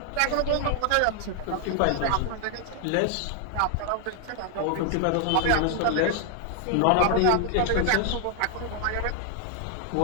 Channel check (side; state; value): both; different; correlation 0.00